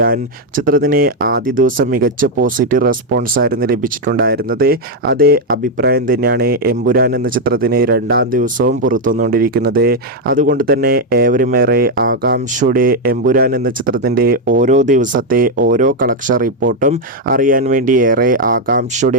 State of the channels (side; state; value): both; normal; correlation 0.03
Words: ചിത്രത്തിന് ആദ്യ ദിവസം മികച്ച പോസിറ്റീവ് റെസ്പോൺസ് ആയിരുന്നു ലഭിച്ചിട്ടുണ്ടായിരുന്നത്. അതേ അഭിപ്രായം തന്നെയാണ് എമ്പുരാൻ എന്ന ചിത്രത്തിന് രണ്ടാം ദിവസവും പുറത്തുവന്നുകൊണ്ടിരിക്കുന്നത്. അതുകൊണ്ട് തന്നെ ഏവരുമേറെ ആകാംക്ഷയോടെ എമ്പുരാൻ എന്ന ചിത്രത്തിൻ്റെ ഓരോ ദിവസത്തെ ഓരോ കളക്ഷൻ റിപ്പോർട്ടും അറിയാൻ വേണ്ടി ഏറെ